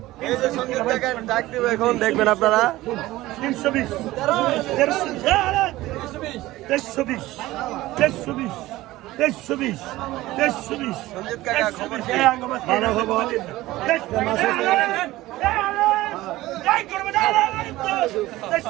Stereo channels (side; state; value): left; quieter; 17.4 dB